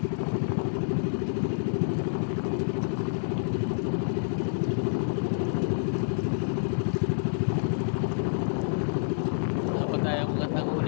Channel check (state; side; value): silent; right; digital silence